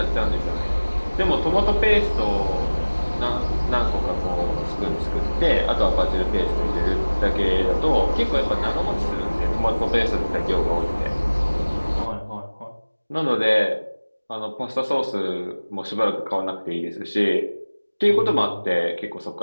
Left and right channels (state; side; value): inverted; both; correlation -1.00